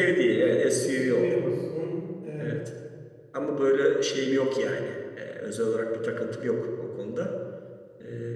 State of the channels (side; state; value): both; identical; correlation 1.00